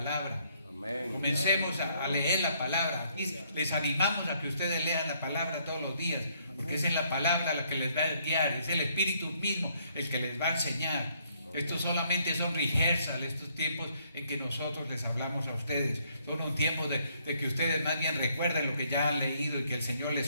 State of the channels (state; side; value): inverted; both; correlation -0.68